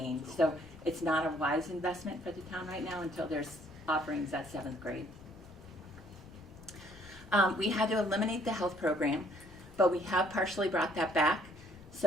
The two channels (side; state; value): left; noise; rumble, 20 dB below the sound